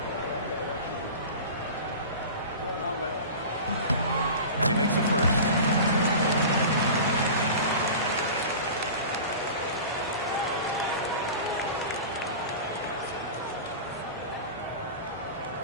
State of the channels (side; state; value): both; inverted; correlation -0.34